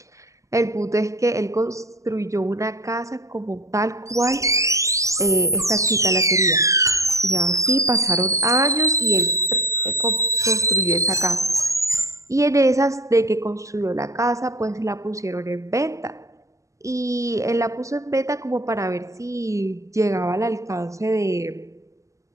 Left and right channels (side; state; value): left; late; 0.16 ms